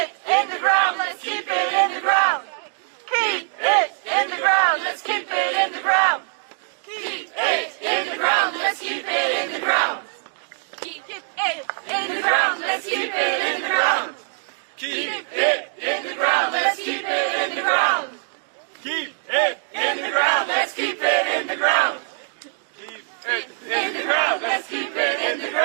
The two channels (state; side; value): silent; left; 60 dB below the other